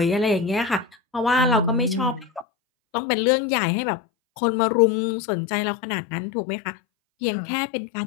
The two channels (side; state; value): right; drops out; at 2.5 s